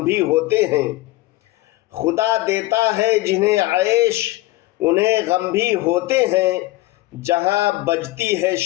بھی ہوتے ہیں، خدا دیتا ہے جنہیں عیش انہیں غم بھی ہوتے ہیں۔ جہاں بجتی ہے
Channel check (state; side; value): quieter; right; 18.6 dB